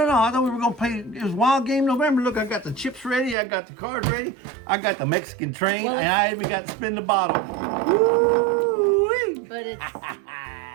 thought we were gonna play. It was Wild Game November. Look, I got the chips ready. I got the cards ready. I got the Mexican train, and I even got to spin the bottle. Woo-wee. But it's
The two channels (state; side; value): drops out; left; at 3.4 s